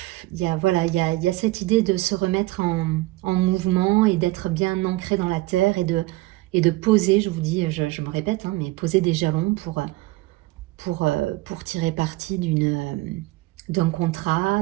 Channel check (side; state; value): left; quieter; 19.7 dB